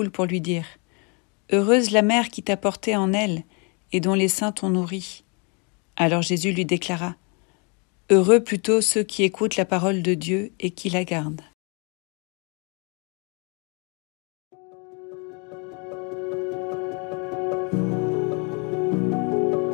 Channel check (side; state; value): right; quieter; 34.0 dB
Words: pour lui dire « Heureuse la mère qui t'a porté en elle et dont les seins t'ont nourri. » Alors Jésus lui déclara « Heureux plutôt ceux qui écoutent la parole de Dieu et qui la gardent. »